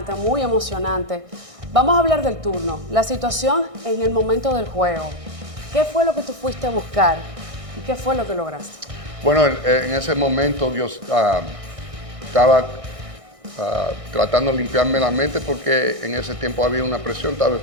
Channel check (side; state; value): left; late; 1.6 ms